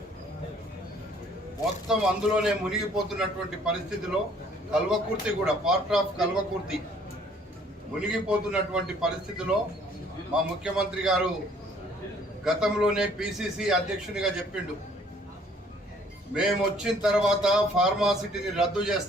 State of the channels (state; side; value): normal; both; correlation 0.59